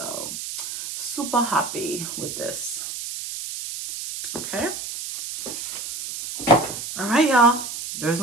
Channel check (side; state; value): right; noise; hiss, 7 dB below the sound